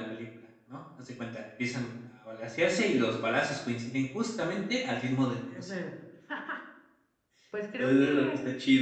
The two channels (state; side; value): identical; both; correlation 1.00